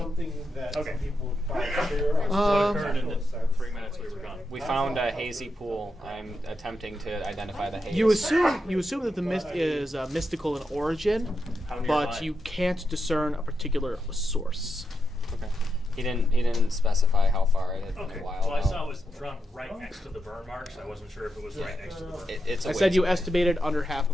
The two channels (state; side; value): normal; both; correlation 0.85